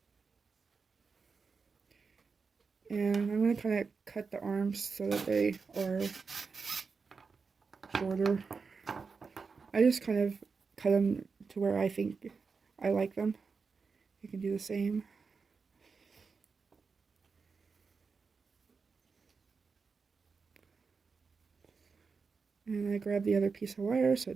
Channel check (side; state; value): left; quieter; 5.0 dB